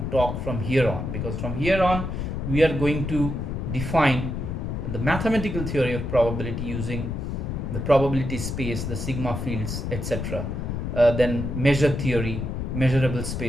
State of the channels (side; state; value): left; noise; rumble, 4 dB below the sound